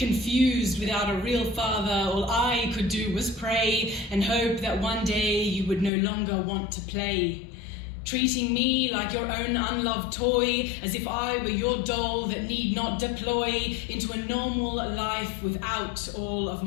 without a real father. All I could do was pray and hope that one day you would no longer want to play. Treating me like your own unloved toy, as if I were your doll that need not deploy into a normal life without all of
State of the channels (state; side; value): drops out; right; at 5.9 s